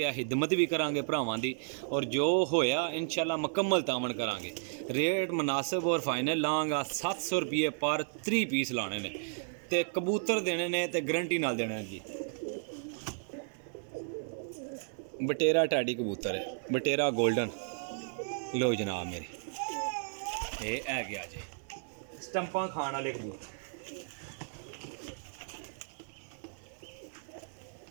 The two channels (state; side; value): silent; left; 55 dB below the other